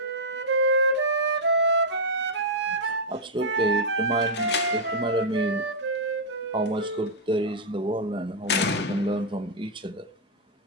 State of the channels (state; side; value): normal; both; correlation -0.06